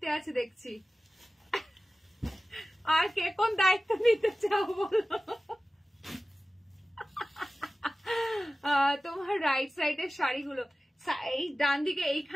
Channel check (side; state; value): both; normal; correlation 0.96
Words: আছে দেখছি আর কে কোন দায়িত্ব নিতে চাও বলো তোমার রাইট সাইডের শাড়িগুলো এই ডান দিকে